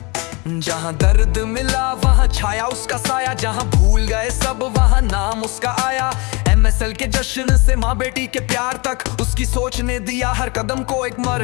जहाँ दर्द मिला वहाँ छाया उसका साया, जहाँ भूल गए सब वहाँ नाम उसका आया। MSL के जश्न से माँ बेटी के प्यार तक उसकी सोच ने दिया हर कदम को एक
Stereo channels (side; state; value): right; quieter; 28.0 dB